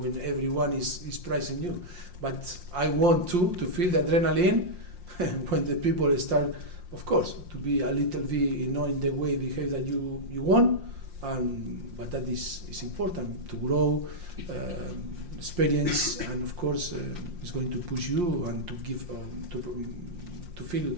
when everyone is praising you. But I want to feel the adrenaline when the people start, of course, to be a little bit, in the way behave that you want. But that is important to grow, experience, and of course, it's going to push you and to give to feel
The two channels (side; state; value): left; late; 5.6 ms